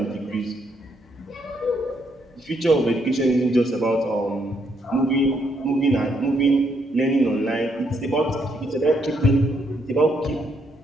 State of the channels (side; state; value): both; normal; correlation 0.74